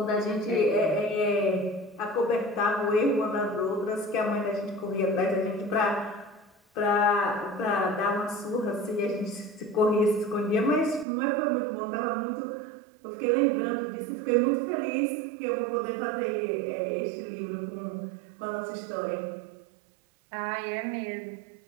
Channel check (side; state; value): left; drops out; at 11.1 s